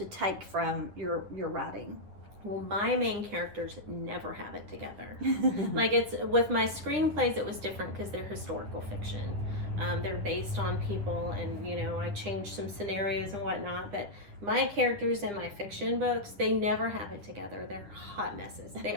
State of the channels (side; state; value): left; late; 10 ms